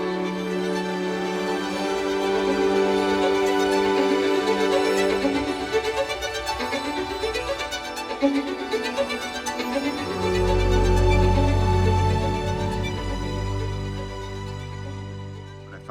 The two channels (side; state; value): both; identical; correlation 1.00